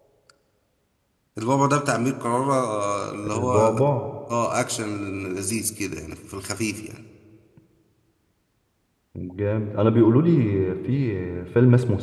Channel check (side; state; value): both; identical; correlation 1.00